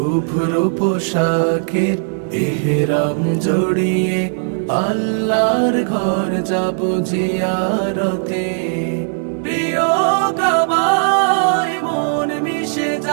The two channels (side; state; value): left; silent; digital silence